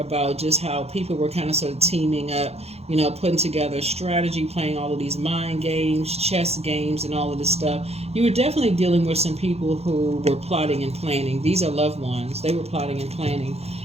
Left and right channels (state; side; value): late; left; 0.30 ms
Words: just how people were kind of sort of teaming up, you know, putting together strategy, playing all of these mind games, chess games, and all of this stuff. You were definitely dealing with some people who were plotting and planning. These are loved ones. They were plotting and planning,